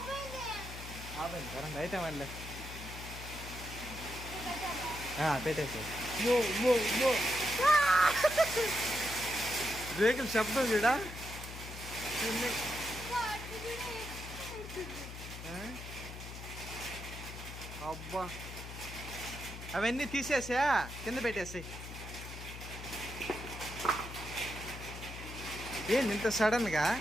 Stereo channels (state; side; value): noise; left; hum, 10 dB below the sound